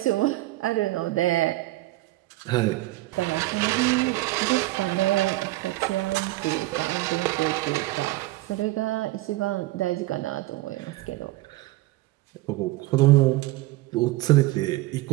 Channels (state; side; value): quieter; left; 18.4 dB